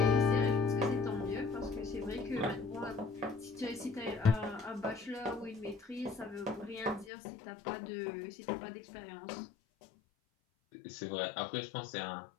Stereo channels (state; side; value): drops out; right; at 7.1 s